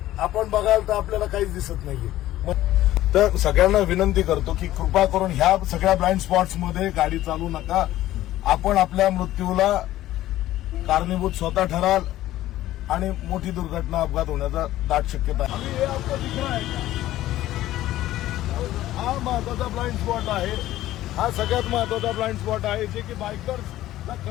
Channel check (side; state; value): right; quieter; 14.6 dB